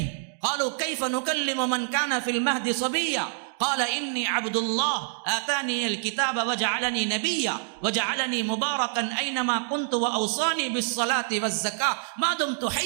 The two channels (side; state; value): left; silent; digital silence